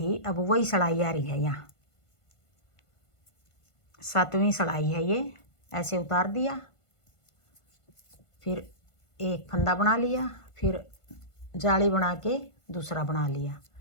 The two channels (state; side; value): late; right; 1.5 ms